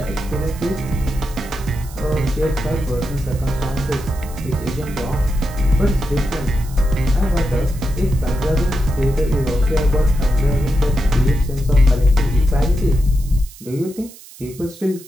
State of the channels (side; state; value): right; noise; hiss, 20 dB below the sound